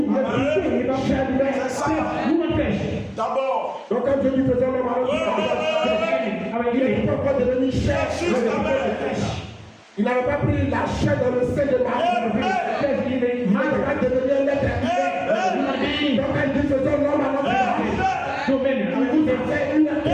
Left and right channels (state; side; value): identical; both; correlation 1.00